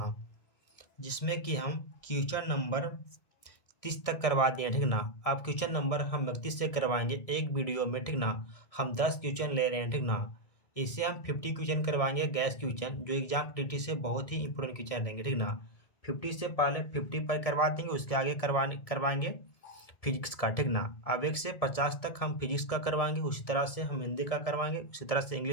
जिसमें कि हम क्वेश्चन नंबर 30 तक करवा दिए, ठीक ना। अब क्वेश्चन नंबर हम 31 से करवाएंगे एक वीडियो में, ठीक ना। हम 10 क्वेश्चन ले रहे हैं, ठीक ना। इससे हम 50 क्वेश्चन करवाएंगे गैस क्वेश्चन, जो एग्जाम टीटी से बहुत ही इंपॉर्टेंट क्वेश्चन रहेंगे, ठीक ना। 50 से पहले 50 पर करवा देंगे, उसके आगे करवाएंगे फिजिक्स का, ठीक ना। अब 1 से 50 तक हम फिजिक्स का करवाएंगे, उसी तरह से हम हिंदी का करवाएंगे, उसी तरह से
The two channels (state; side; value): late; right; 1.7 ms